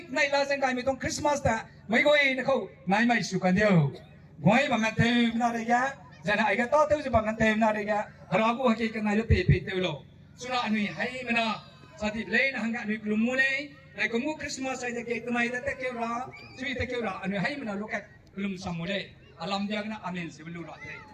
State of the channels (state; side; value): identical; both; correlation 1.00